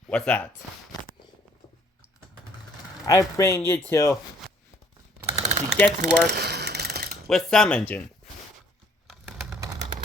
what's that? I bring you to get to work with some engine.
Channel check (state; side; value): normal; both; correlation 0.60